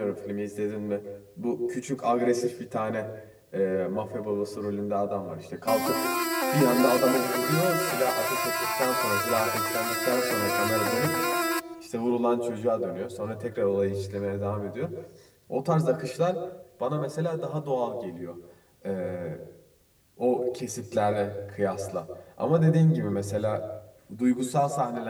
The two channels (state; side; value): identical; both; correlation 1.00